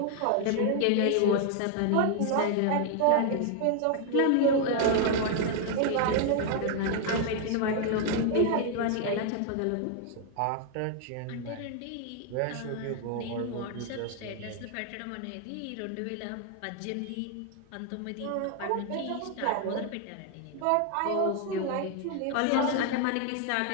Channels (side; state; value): both; different; correlation 0.00